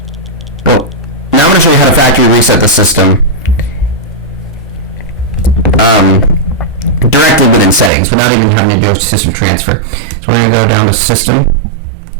Well, now I'm going to show you how to factory reset the system directly within settings without even having to do a system transfer. So we're going to go down to system,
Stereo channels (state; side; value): drops out; left; at 7.9 s